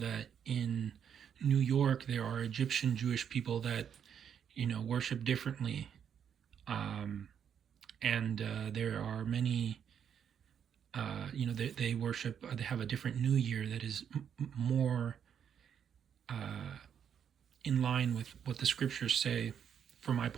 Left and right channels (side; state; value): left; quieter; 8.3 dB